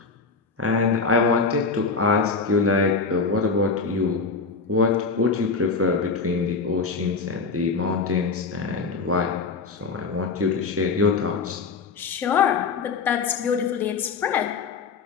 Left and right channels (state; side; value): quieter; right; 4.6 dB